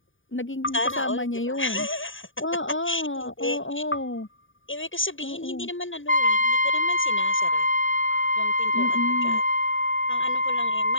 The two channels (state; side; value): late; right; 0.57 ms